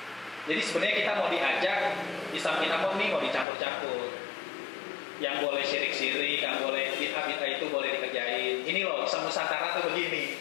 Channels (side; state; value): right; drops out; at 3.5 s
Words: Jadi sebenarnya kita mau diajak Islam kita mau dicampur-campur. Yang boleh syirik-syirik, yang boleh bid'ah-bid'ah itu boleh dikerjain. Ini loh, Islam Nusantara tuh begini.